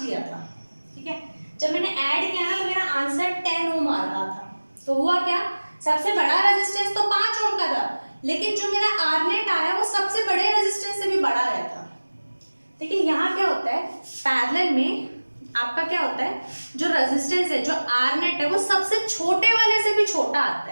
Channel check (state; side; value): inverted; both; correlation -1.00